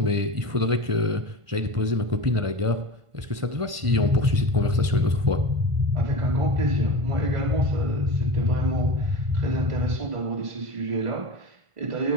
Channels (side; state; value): left; late; 1.5 ms